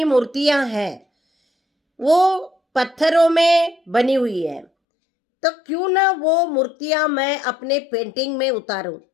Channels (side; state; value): right; drops out; at 4.7 s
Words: मूर्तियां हैं, वो पत्थरों में बनी हुई है। तो क्यों ना वो मूर्तियां मैं अपने पेंटिंग में उतारूं।